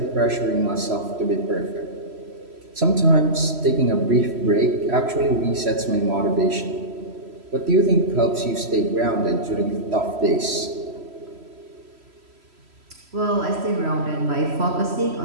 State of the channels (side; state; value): left; late; 3.1 ms